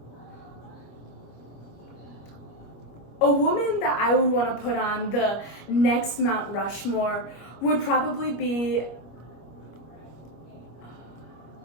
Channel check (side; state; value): right; late; 25 ms